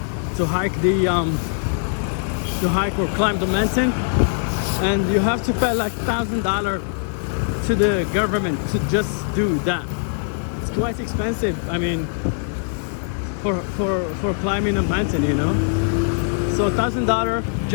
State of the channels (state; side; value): silent; right; digital silence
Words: to hike or climb the mountain, and you have to pay like $1,000 to the government to just do that. It's quite expensive. I mean, for climbing a mountain, you know. So $1,000